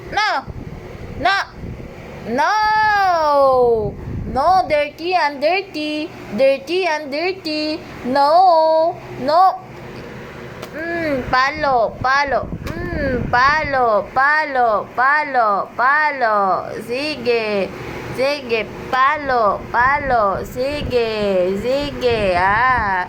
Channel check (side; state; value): both; identical; correlation 1.00